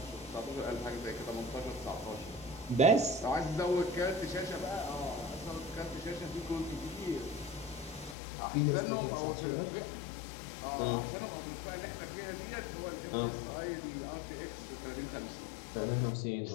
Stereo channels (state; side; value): drops out; right; at 8.2 s